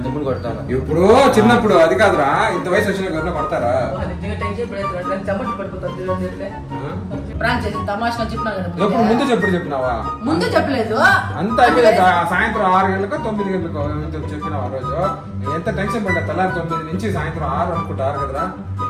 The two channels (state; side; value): identical; both; correlation 1.00